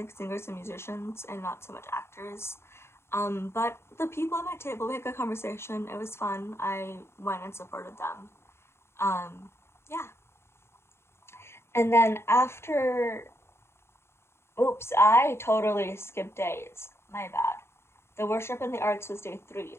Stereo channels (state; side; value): late; right; 0.12 ms